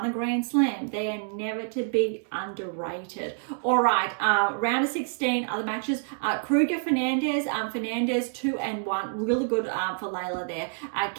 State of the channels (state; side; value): silent; left; digital silence